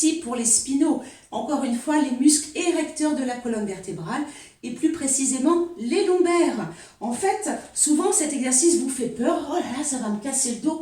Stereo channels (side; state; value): both; identical; correlation 1.00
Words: pour les spinaux. Encore une fois, les muscles érecteurs de la colonne vertébrale et plus précisément les lombaires. En fait, souvent cet exercice vous fait peur. Oh là là, ça va me casser le